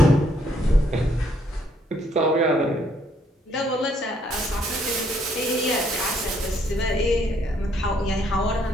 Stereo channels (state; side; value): normal; both; correlation 0.69